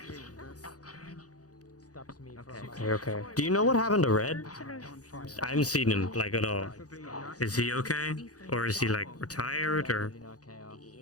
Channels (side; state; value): right; late; 0.67 ms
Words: Okay. Do you know what happened to Red? I haven't seen him like at all. Is he okay, or is he like retired, or?